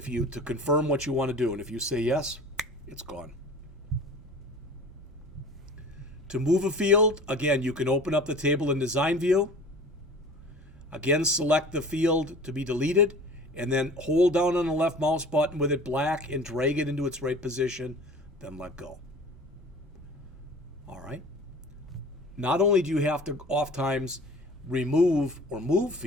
confirm what you want to do. And if you say yes, it's gone. To move a field, again, you can open up the table in design view. Again, select the field to be deleted, and then hold down on the left mouse button with it black and drag it into its right position, then let go. All right. Not only do you have to oftentimes remove or move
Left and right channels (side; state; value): both; normal; correlation 0.42